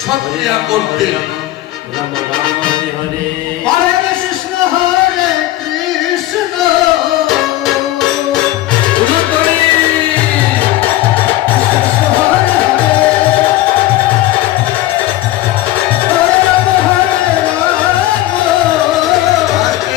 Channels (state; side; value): quieter; right; 15.6 dB